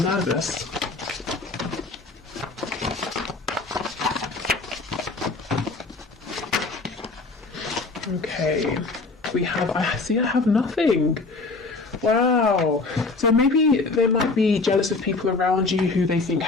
nervous. Okay, we have, I have nothing. Wow. So maybe they might be jealous of people around you who they think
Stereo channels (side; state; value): right; quieter; 3.7 dB